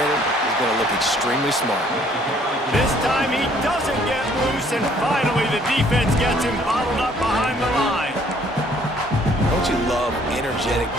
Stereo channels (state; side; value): normal; both; correlation 0.61